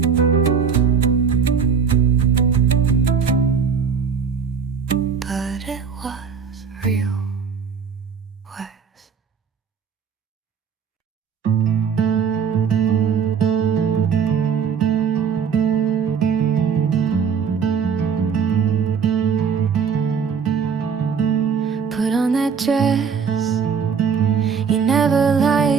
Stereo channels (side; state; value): left; quieter; 6.4 dB